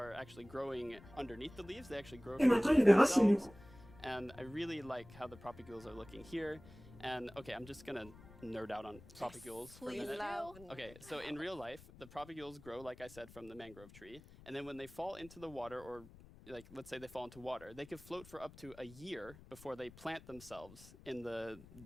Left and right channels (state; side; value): noise; left; rumble, 20 dB below the sound